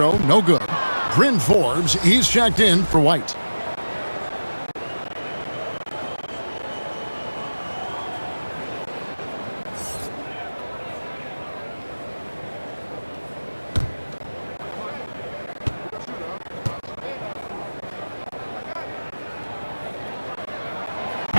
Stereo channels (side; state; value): both; inverted; correlation -1.00